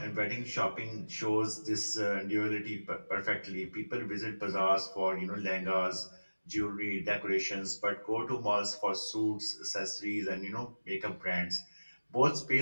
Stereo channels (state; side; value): inverted; both; correlation -1.00